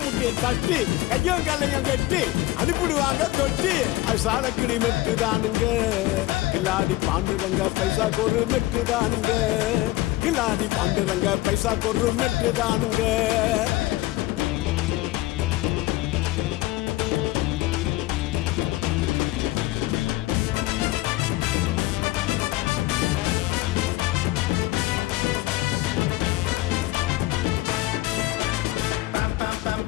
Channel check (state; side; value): quieter; right; 17.9 dB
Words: தட்டி கையும் கல்லையும் கட்டி அனுப்பிடுவாங்க தொட்டி அது சாலக்கிடி மெட்டுதானுங்க கில்லாடி பாண்டுரங்க பைசா கொரு மெட்டுதானுங்க கில்லாடி பாண்டுரங்க பைசா கொரு மெட்டுதானுங்க